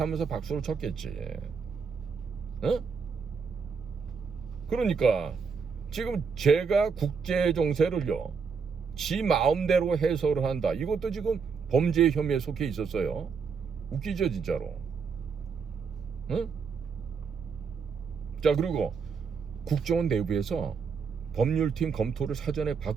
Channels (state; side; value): quieter; left; 5.7 dB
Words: 박수를 쳤겠지. 그러니까 지금 제가 국제 정세를요 지 마음대로 해석을 한다. 이것도 지금 범죄 혐의에 속해 있었어요. 웃기죠 진짜로. 자, 그리고 국정원 내부에서 법률팀 검토를 사전에